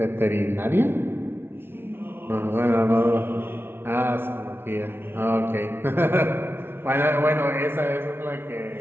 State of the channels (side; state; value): left; late; 0.11 ms